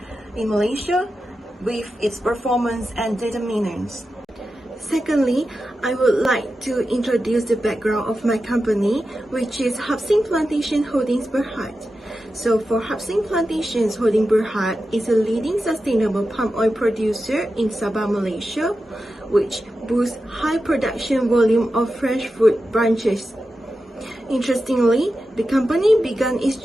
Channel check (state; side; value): normal; both; correlation 0.91